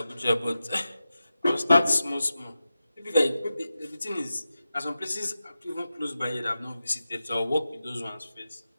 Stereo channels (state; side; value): inverted; both; correlation -0.91